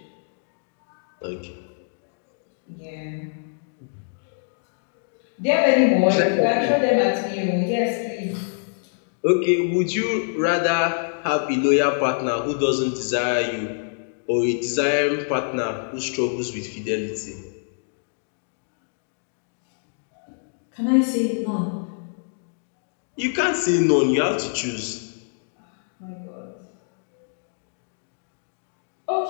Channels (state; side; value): silent; right; digital silence